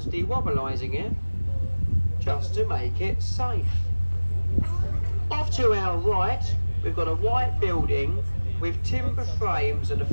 dewobblising it just to make it safe. Off to our right, we've got a white building with timber frames and a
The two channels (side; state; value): both; inverted; correlation -1.00